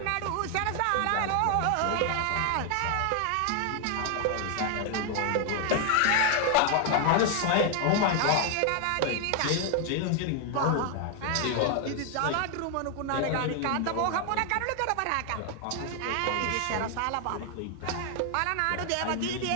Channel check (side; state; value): both; different; correlation 0.00